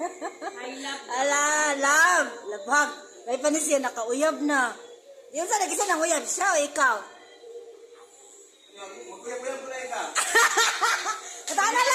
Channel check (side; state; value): both; identical; correlation 1.00